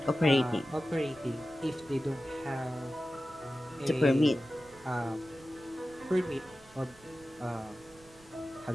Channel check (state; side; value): noise; right; rumble, 25 dB below the sound